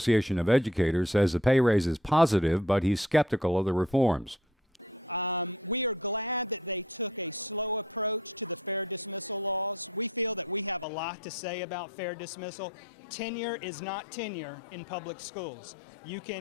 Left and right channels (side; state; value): right; drops out; at 10.9 s